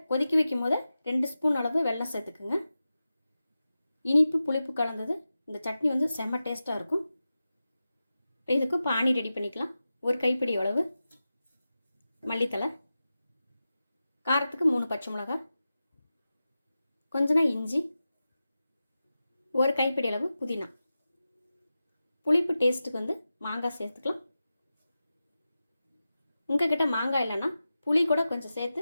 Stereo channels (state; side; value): inverted; both; correlation -0.93